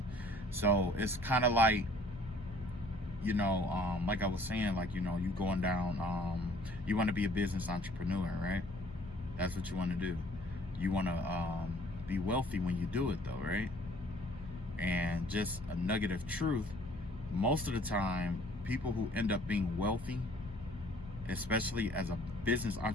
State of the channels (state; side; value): normal; both; correlation 0.56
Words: So it's kind of like, you know, like I was saying, like, you know, you going down, you want to be a business entrepreneur, right? That's what you want to do. You want to be wealthy when you do it, though, right? And just a nugget of truth, most of the time, people who end up being wealthy, especially as a business